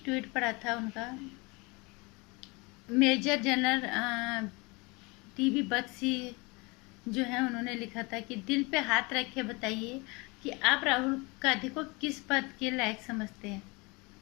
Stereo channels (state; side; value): quieter; right; 26.8 dB